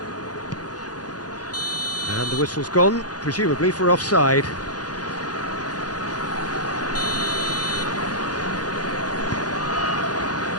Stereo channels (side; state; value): right; late; 0.69 ms